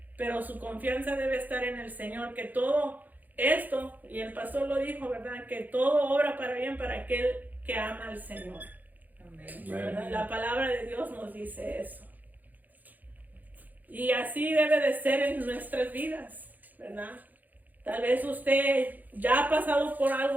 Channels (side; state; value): left; late; 0.083 ms